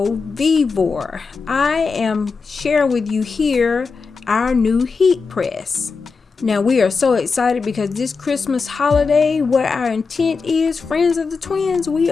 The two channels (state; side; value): quieter; right; 4.8 dB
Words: Vevor. I am sharing with you here our new heat press. Now we are so excited because this Christmas holiday, what our intent is, friends of the twins, we